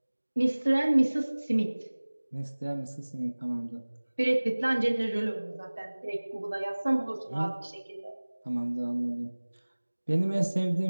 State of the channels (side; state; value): both; inverted; correlation -1.00